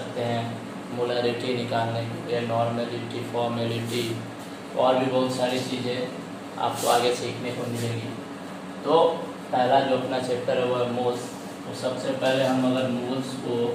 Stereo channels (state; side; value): identical; both; correlation 1.00